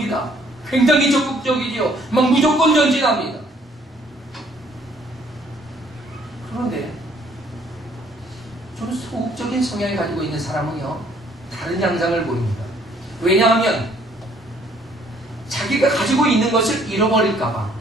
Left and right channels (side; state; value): both; normal; correlation 0.62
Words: 굉장히 적극적이지요. 막 무조건 전진합니다. 그런데 좀 소극적인 성향을 가지고 있는 사람은요, 다른 양상을 보입니다. 왜냐하면 자기가 가지고 있는 것을 잃어버릴까봐